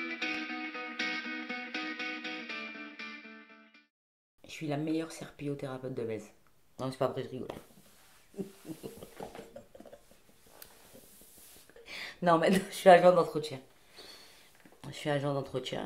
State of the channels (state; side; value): identical; both; correlation 1.00